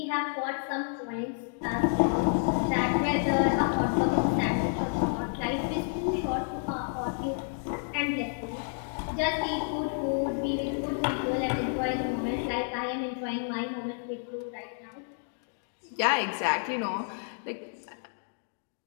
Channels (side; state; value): right; silent; 58 dB below the other